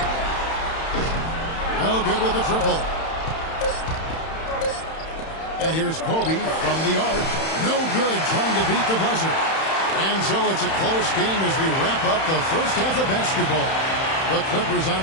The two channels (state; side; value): late; right; 31 ms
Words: No good with the triple. And here's Kobe from the arc. No good, trying to beat the buzzer. And so it's a close game as we wrap up the first half of basketball. The Clippers on